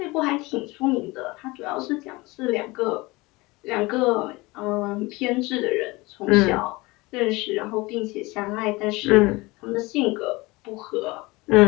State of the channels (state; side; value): quieter; right; 22.7 dB